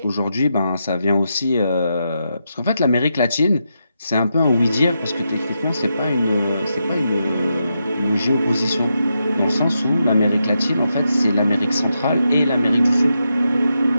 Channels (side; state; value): both; inverted; correlation -0.85